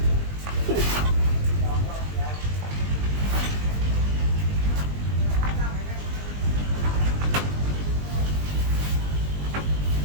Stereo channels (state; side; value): late; left; 20 ms